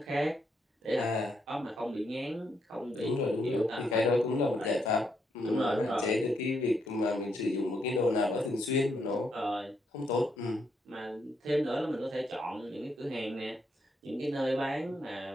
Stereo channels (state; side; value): normal; both; correlation 0.77